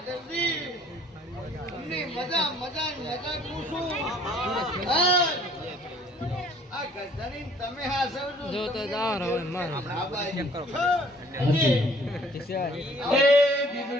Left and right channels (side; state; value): both; normal; correlation 0.57